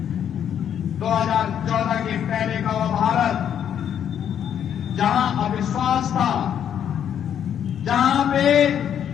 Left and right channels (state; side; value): quieter; right; 9.2 dB